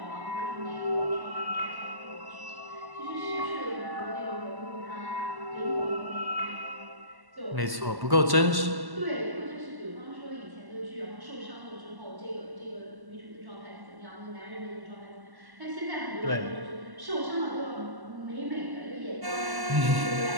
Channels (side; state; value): left; late; 1.1 ms